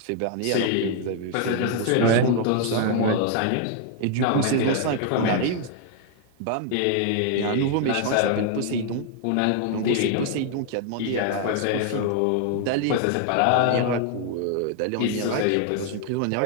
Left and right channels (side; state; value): both; different; correlation 0.00